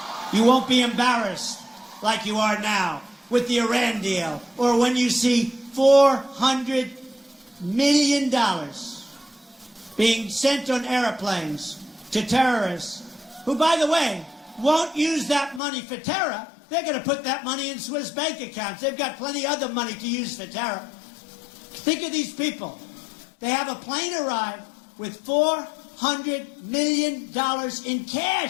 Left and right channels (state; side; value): drops out; right; at 15.6 s